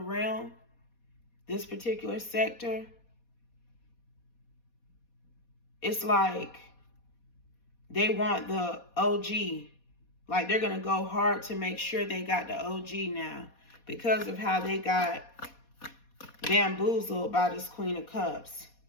this particular sector. It's like they want the OG. Like they're going to go hard to make sure they got the OG now because of how they got bamboozled by this Queen of Cups.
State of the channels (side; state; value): right; late; 4.2 ms